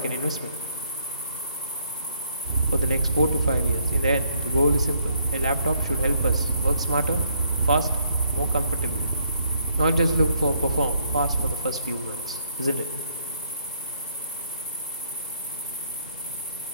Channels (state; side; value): inverted; both; correlation -0.70